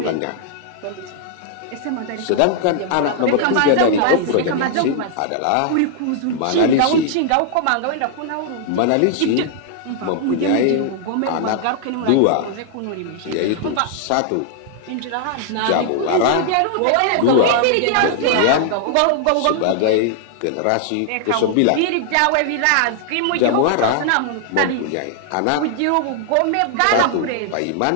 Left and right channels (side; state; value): both; different; correlation 0.00